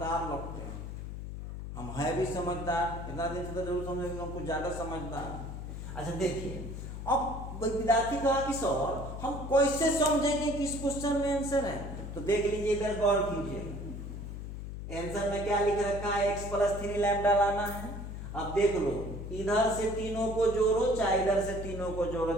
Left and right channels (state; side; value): noise; left; hum, 8 dB below the sound